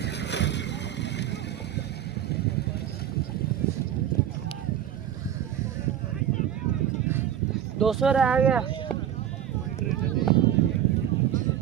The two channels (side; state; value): left; quieter; 10.4 dB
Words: दो सौ रह गया।